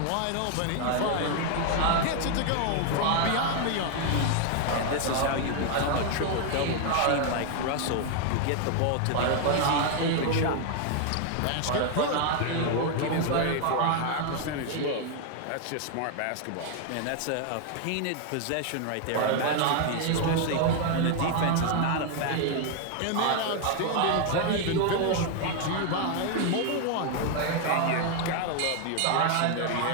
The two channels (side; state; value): both; different; correlation 0.00